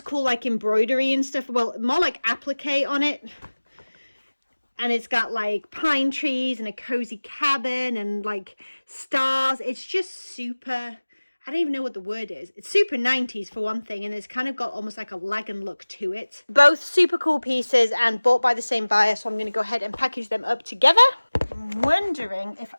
like embroidery and stuff. Well, more like applique on it. And it's got like pine trees and a cozy cabin and like stars. It's just super, I don't even know what the word is. It's super 90s for one thing, and it's kind of got almost like a Lagan look to it. Both super cool pieces and bought by the same buyer, so I'm going to go ahead and package them up together. I'm wondering if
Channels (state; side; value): inverted; both; correlation -1.00